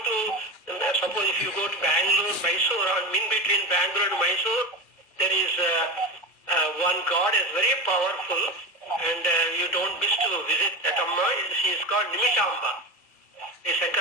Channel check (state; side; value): late; right; 2.3 ms